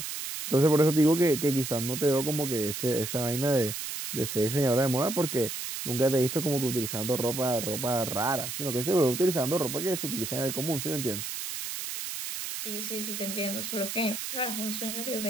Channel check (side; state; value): right; noise; hiss, 5 dB below the sound